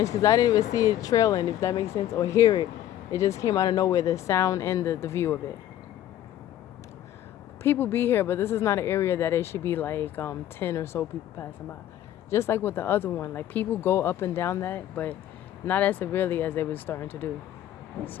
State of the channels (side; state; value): right; quieter; 12.1 dB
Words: because I didn't even see it trailing, if that makes sense, or hear it. It just came out of nowhere, the sound and the view of it. People be here, but this is not an area that it should be like 10 or so people passing by. Just like with the other one, like people go up and down that, but not as severely as they were starting to do.